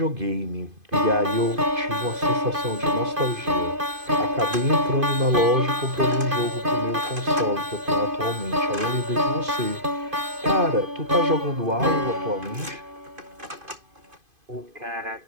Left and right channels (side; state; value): left; late; 2.5 ms